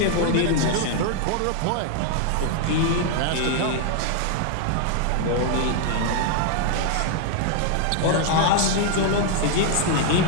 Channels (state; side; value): different; both; correlation 0.00